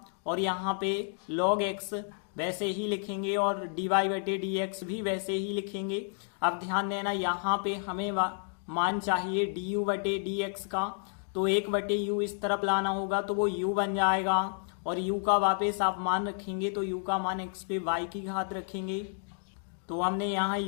और यहाँ पे log x वैसे ही लिखेंगे और dy/dx भी वैसे ही लिखेंगे। अब ध्यान देना, यहाँ पे हमें मान चाहिए du/dx का, तो 1/u इस तरफ लाना होगा तो वो u बन जाएगा, और u का वापस आप मान रखेंगे तो u का मान x पे y की घात रखेंगे। तो हमने यहाँ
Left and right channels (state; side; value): silent; right; 57 dB below the other